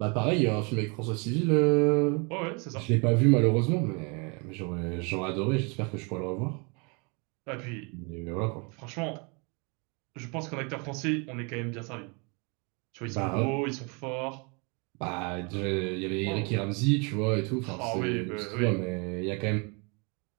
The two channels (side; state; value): left; quieter; 32.2 dB